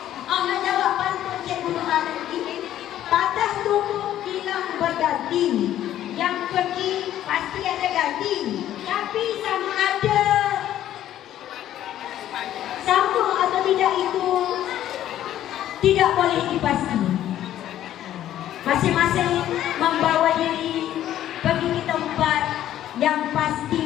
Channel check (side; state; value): right; quieter; 12.1 dB